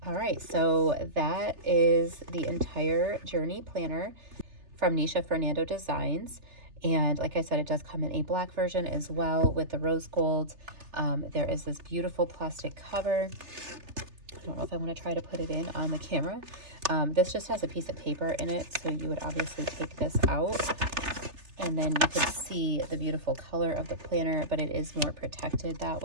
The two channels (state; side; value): late; left; 3.3 ms